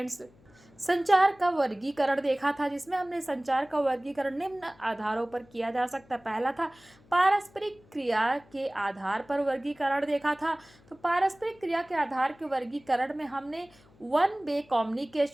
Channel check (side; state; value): left; noise; hum, 28 dB below the sound